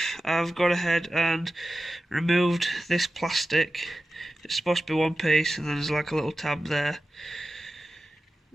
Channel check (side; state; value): both; normal; correlation 0.94